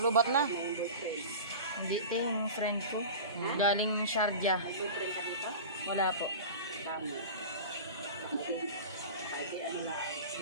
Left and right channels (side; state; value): both; inverted; correlation -0.33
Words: na. Hindi ito yung friend ko. Galing Sharjah. Nagpupray ka dito? Wala po. Tama. Pwede ano na,